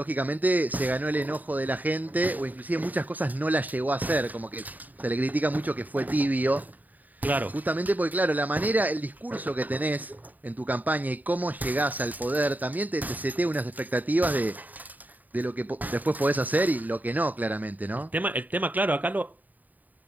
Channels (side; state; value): left; late; 0.082 ms